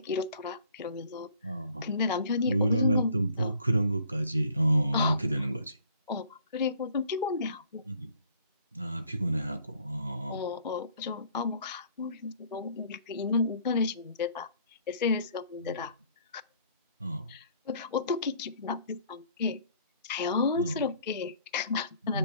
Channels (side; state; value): both; inverted; correlation -0.58